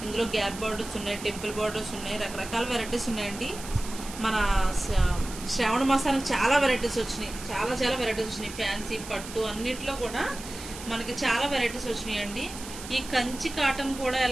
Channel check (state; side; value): noise; right; hiss, 12 dB below the sound